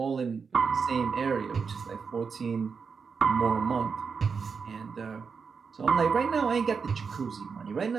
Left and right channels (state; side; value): quieter; left; 5.6 dB